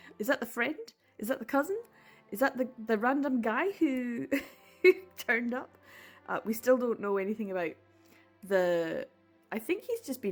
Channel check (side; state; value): both; identical; correlation 1.00